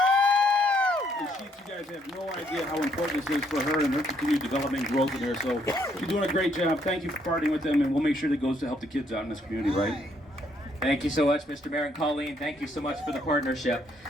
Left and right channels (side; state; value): both; normal; correlation 0.70